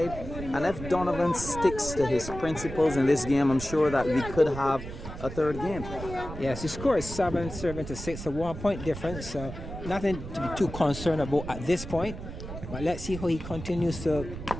And if Donavan sticks to his principles in this game, I'm sure that we could have a third game. Yes, the score is 7-6, a 1 point difference, so nothing to be too concerned about at this point. But let's see how he continues to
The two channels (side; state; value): right; noise; rumble, 10 dB below the sound